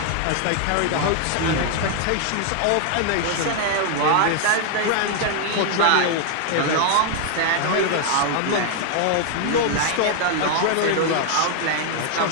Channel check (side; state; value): both; different; correlation 0.00